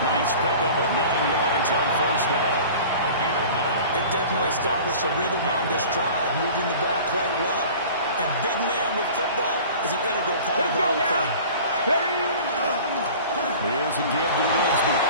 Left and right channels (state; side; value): inverted; both; correlation -0.42